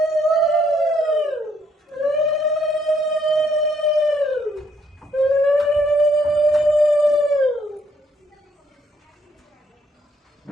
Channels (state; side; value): normal; both; correlation 0.70